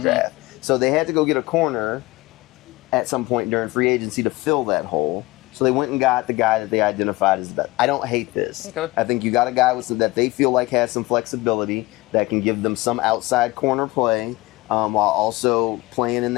draft. So they had to go get a corner at some point during free agency to fill that hole. So they went and got the guy that they identified as the best. I don't hate this. Okay. I think you got a guy that they feel like has some flexibility, that can give them some outside corner play, while also playing in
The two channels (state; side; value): quieter; right; 20.7 dB